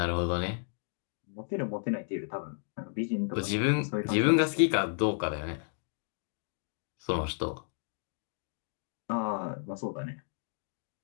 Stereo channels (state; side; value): silent; right; digital silence